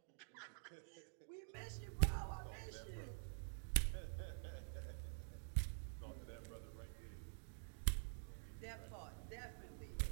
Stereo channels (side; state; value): left; silent; digital silence